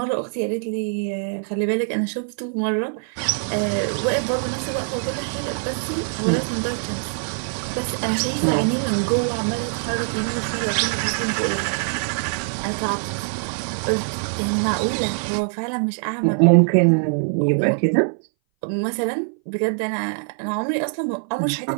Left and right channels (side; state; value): left; silent; 60 dB below the other